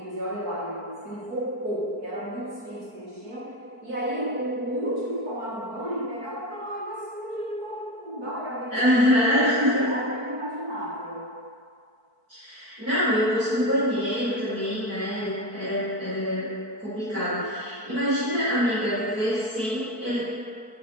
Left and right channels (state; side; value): late; left; 4.5 ms